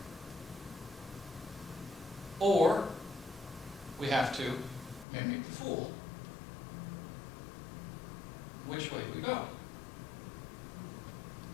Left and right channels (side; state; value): right; drops out; at 5.1 s